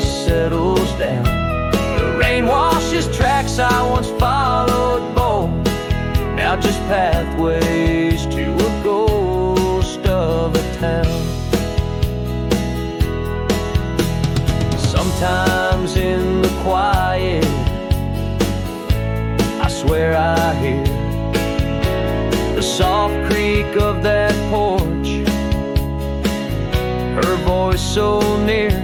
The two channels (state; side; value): identical; both; correlation 1.00